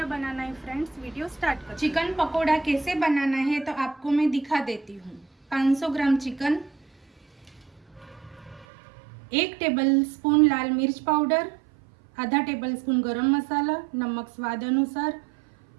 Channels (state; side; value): drops out; left; at 8.7 s